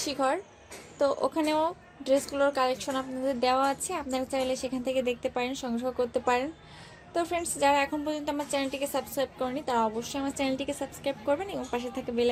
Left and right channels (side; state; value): both; identical; correlation 1.00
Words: ঘর, তো ওখানেও ড্রেসগুলোর কালেকশন আপনাদের দেওয়া আছে, আপনারা চাইলে সেখান থেকে দেখতে পারেন, সংগ্রহ করতে পারেন। তো ফ্রেন্ডস, যারা এখন পর্যন্ত আমার চ্যানেলটিকে সাবস্ক্রাইব করেনি তারা অবশ্যই আমার চ্যানেলটিকে সাবস্ক্রাইব করবেন এবং পাশে থাকা বেল